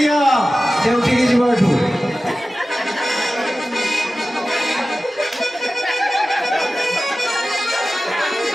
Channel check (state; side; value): normal; both; correlation 0.95